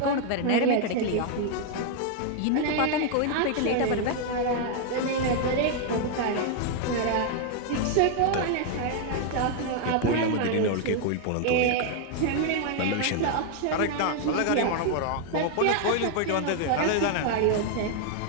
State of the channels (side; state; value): both; different; correlation 0.00